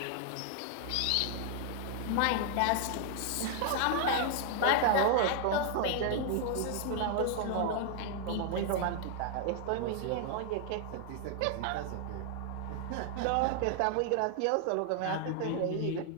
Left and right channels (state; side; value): different; both; correlation 0.00